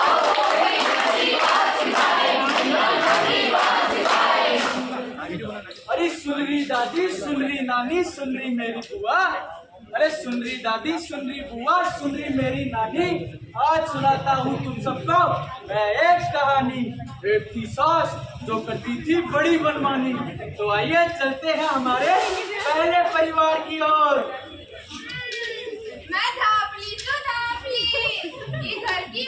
अरे सुन रही दादी, सुन रही नानी, सुन रही मेरी बुआ, अरे सुन रही दादी, सुन रही बुआ, सुन रही मेरी नानी, आज सुनाता हूँ तुम सबको मैं एक कहानी। एक थी सास जो करती थी बड़ी मनमानी। तो आइए चलते हैं हमारे पहले परिवार की ओर। मैं धापली तो धापली, ये घर की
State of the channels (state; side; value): identical; both; correlation 1.00